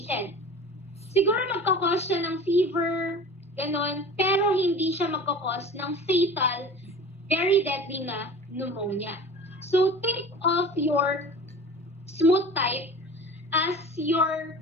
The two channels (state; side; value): normal; both; correlation 0.38